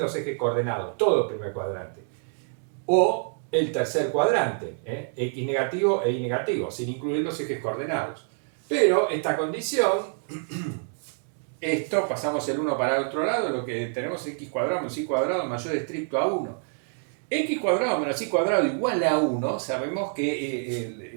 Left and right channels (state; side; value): silent; left; 60 dB below the other